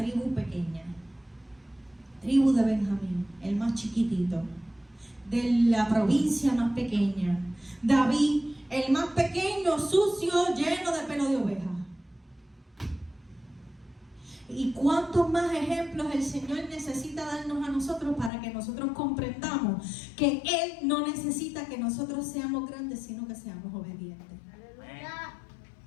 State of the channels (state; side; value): drops out; right; at 18.3 s